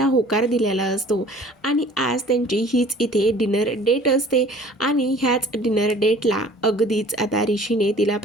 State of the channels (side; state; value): both; normal; correlation 0.50